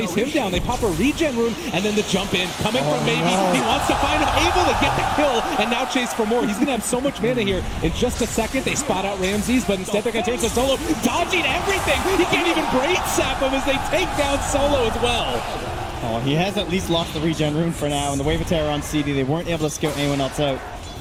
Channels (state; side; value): identical; both; correlation 1.00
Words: him down. They pop a regen rune, and then the jump in, coming from Maybe. He wants to find him, able to get the kill, and now chase for more. He's going to have so much mana here. In just a second, they spot out Ramses, but instead they're going to turn to Solo, dodging everything. He can't even braid sap him as they take down Solo as well. Oh, he has at least lost the regen rune for now, and the Wave of Terror on CD, they weren't able to scout anyone else out.